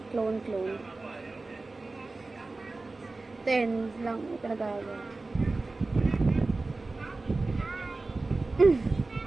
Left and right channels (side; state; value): left; quieter; 3.4 dB